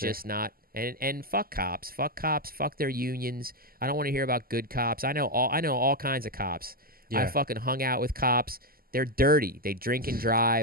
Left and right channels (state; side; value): late; left; 0.42 ms